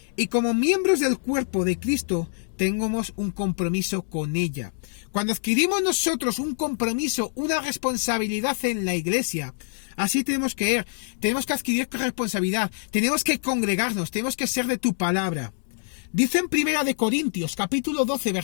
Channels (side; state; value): right; silent; digital silence